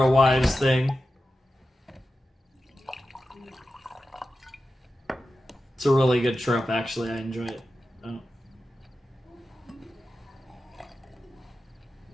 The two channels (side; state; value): both; normal; correlation 0.92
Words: wives thing. It's a really good trope, actually. I enjoy it. Oh.